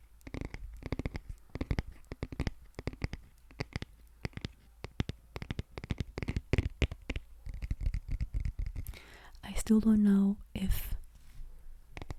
I still don't know if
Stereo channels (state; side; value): identical; both; correlation 1.00